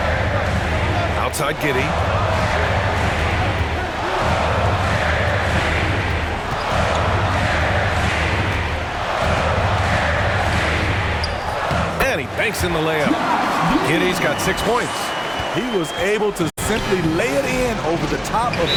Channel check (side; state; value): both; identical; correlation 1.00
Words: Outside Giddey. And he banks in the layup. Giddey's got 6 points. He was able to simply lay it in over the top of